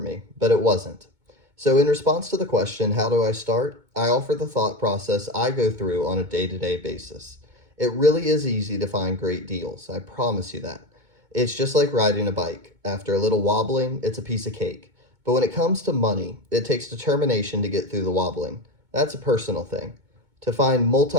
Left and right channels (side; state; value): left; late; 2.2 ms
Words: but it wasn't. So, in response to the question, how do I start? I offer the thought process I go through on a day to day basis. It really is easy to find great deals, I promise you that. It's just like riding a bike. After a little wobbling, it's a piece of cake. But when it comes to money, it takes determination to get through the wobbling. That's a personal thing. To find